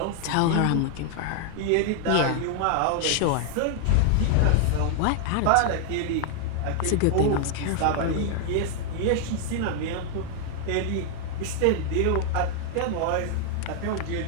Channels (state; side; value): different; both; correlation 0.00